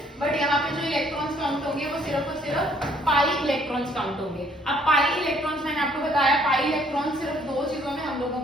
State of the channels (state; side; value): normal; both; correlation 0.63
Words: बट यहाँ पे जो इलेक्ट्रॉन्स काउंट होंगे वो सिर्फ और सिर्फ पाई इलेक्ट्रॉन्स काउंट होंगे। अब पाई इलेक्ट्रॉन्स मैंने आपको बताया, पाई इलेक्ट्रॉन सिर्फ 2 चीजों में हम लोगों